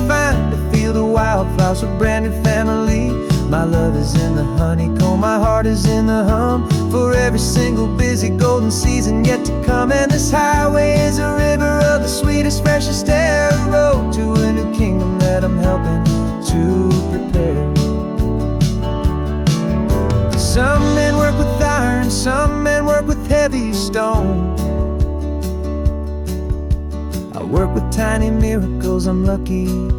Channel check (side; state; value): both; identical; correlation 1.00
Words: find a field of wildflowers with brand new family. My love is in the honeycomb, my heart is in the hum, for every single busy golden season yet to come. And this highway is a river of the sweetest, freshest air, a road to a new kingdom that I'm helping to prepare. Some men work with iron, some men work with heavy stone. I work with tiny miracles I'm lucky